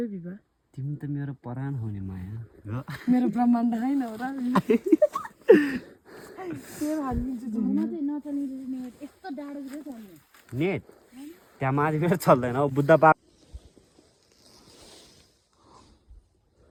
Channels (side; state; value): both; identical; correlation 1.00